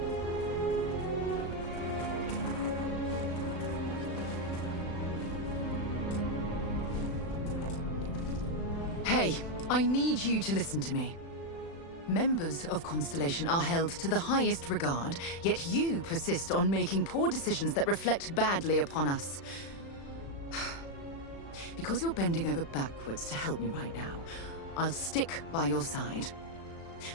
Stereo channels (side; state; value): right; late; 36 ms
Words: Hey, I need you to listen to me. Members of Constellation are held to the highest regard, yet you persist on making poor decisions that reflect badly upon us. Because you're bending over backwards to help me right now, I'll stick by your side.